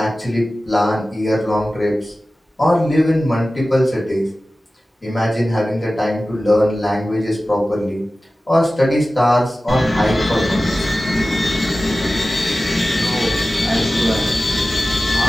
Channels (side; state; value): both; normal; correlation 0.96